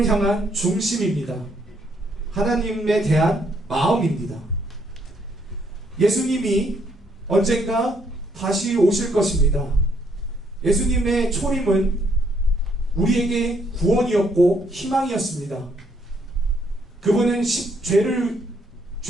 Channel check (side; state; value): both; normal; correlation 0.71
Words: 향한 중심입니다. 하나님에 대한 마음입니다. 예수님이 언젠가 다시 오실 것입니다. 예수님의 초림은 우리에게 구원이었고 희망이었습니다. 그분은 죄를